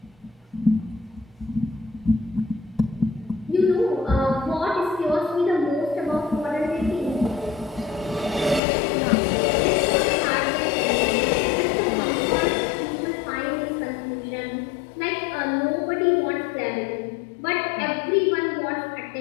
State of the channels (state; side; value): drops out; right; at 8.6 s